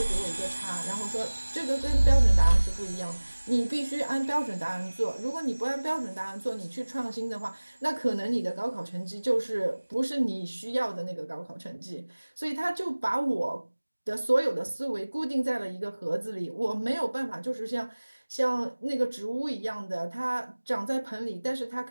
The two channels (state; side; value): inverted; both; correlation -1.00